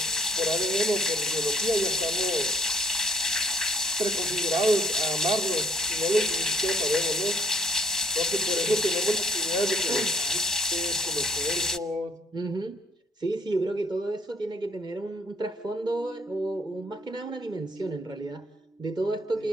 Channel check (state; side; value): normal; both; correlation 0.62